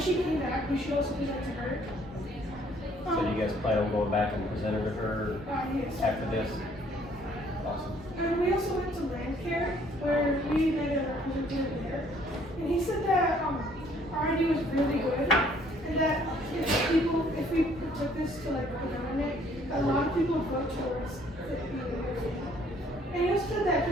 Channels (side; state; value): both; normal; correlation 0.62